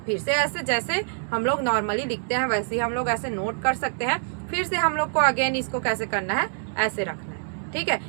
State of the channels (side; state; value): left; silent; digital silence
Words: से ऐसे, जैसे हम लोग नॉर्मली लिखते हैं वैसे ही हम लोग ऐसे नोट कर सकते हैं। फिर से हम लोग को अगेन इसको कैसे करना है, ऐसे रखना है। ठीक है,